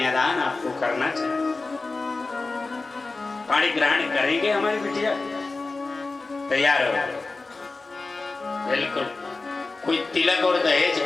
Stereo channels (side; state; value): right; quieter; 3.6 dB